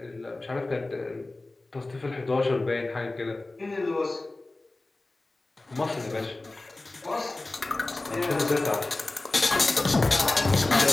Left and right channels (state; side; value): quieter; right; 3.0 dB